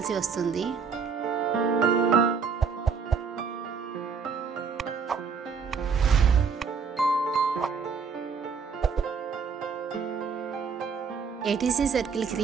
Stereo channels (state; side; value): quieter; left; 5.7 dB